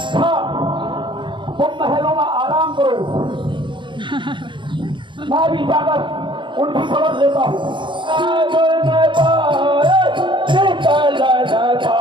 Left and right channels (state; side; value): late; left; 0.23 ms